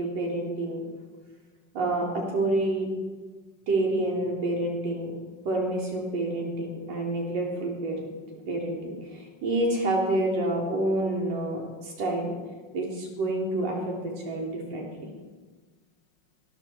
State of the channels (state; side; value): late; left; 5.5 ms